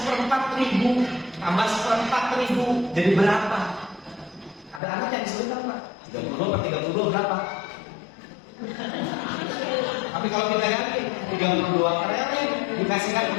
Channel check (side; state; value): right; drops out; at 4.8 s